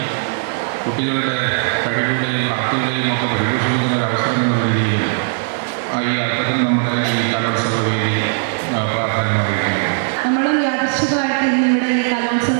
കുട്ടികളുടെ കഴിവുകളെയും പ്രാപ്തികളെയും ഒക്കെ പരിപോഷിപ്പിക്കുന്ന ഒരു അവസരം എന്ന രീതിയിലും ഈ അർത്ഥത്തിൽ നമ്മുടെ ഈ കലോത്സവ വേദി പ്രാധാന്യം അറിയിക്കുന്നു. നമ്മളും യാദൃശ്ചികമായിട്ട് ഇന്നിവിടെ ഈ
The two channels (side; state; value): left; silent; digital silence